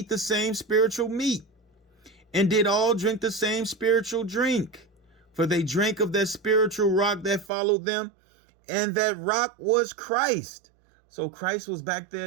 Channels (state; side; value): drops out; left; at 7.5 s